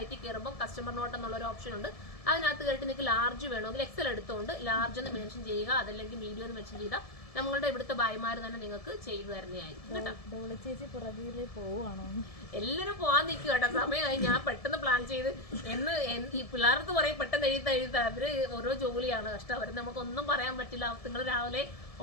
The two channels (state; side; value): late; right; 1.7 ms